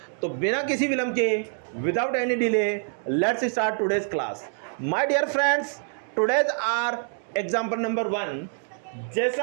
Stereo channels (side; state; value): left; silent; 61 dB below the other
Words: तो बिना किसी विलंब के, without any delay, let's start today's class. My dear friends, today's our example number 1,